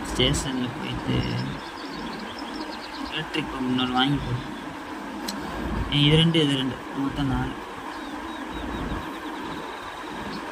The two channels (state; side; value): identical; both; correlation 1.00